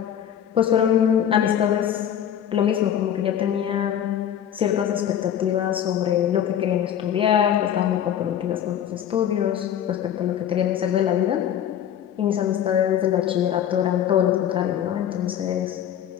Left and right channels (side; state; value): right; quieter; 9.8 dB